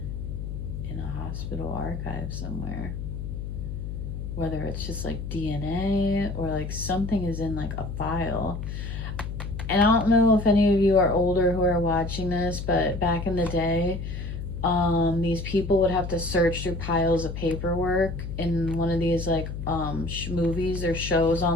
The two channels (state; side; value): noise; left; hum, 6 dB below the sound